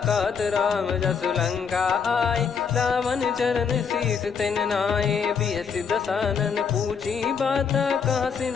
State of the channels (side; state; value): right; quieter; 6.3 dB